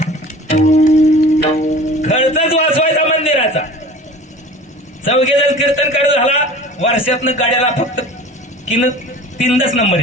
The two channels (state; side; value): normal; both; correlation 0.42